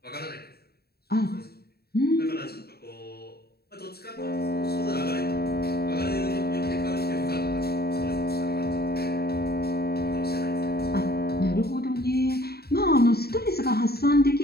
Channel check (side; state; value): right; late; 0.46 ms